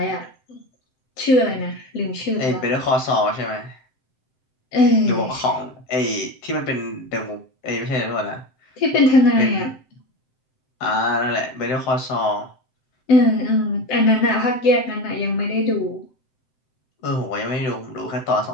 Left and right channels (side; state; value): right; late; 7.7 ms